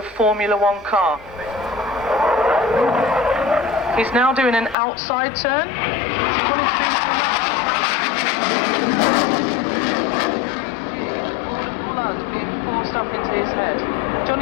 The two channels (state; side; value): drops out; right; at 4.8 s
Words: Formula 1 car. He's now doing an outside turn. Blood being forced up into his head.